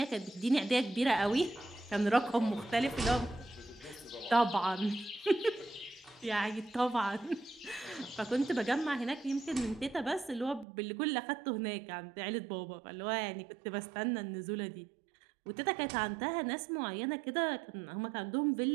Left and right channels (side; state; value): left; drops out; at 10.7 s